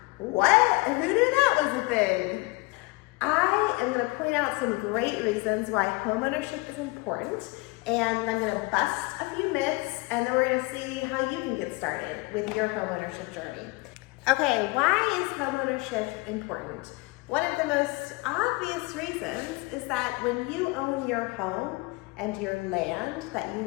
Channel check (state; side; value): quieter; right; 25.1 dB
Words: What? Who knew that was a thing? I am going to point out some great reasons why homeownership is important, and I'm going to bust a few myths, and then we're going to see how you can get started with your homeownership journey. Okay, why is homeownership important? One of the most obvious reasons is that when you own your home and your land that